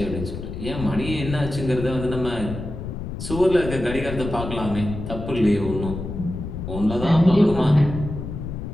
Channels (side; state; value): left; noise; rumble, 7 dB below the sound